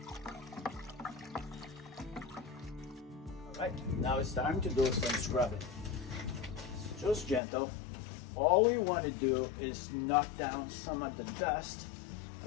Right, now it's time to do some scrubbing. So just gentle. All we want to do is knock down some of the dust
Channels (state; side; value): drops out; right; at 7.4 s